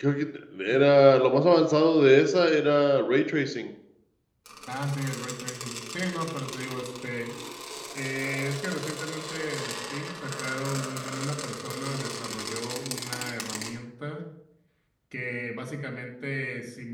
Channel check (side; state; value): both; identical; correlation 1.00